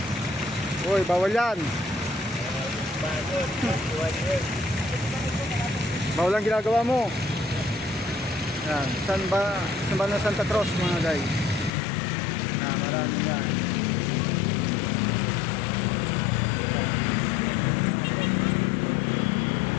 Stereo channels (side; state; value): right; drops out; at 11.7 s